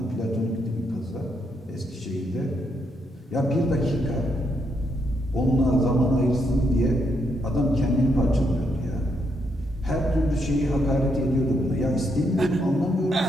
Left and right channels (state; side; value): normal; both; correlation 0.77